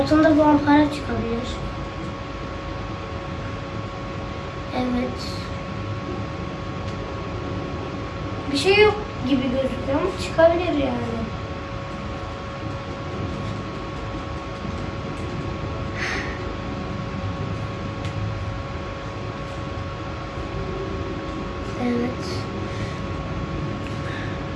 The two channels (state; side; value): identical; both; correlation 1.00